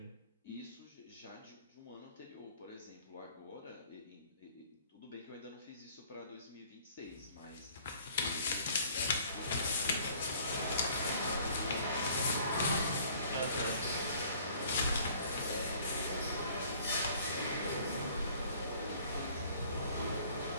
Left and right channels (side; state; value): both; inverted; correlation -0.55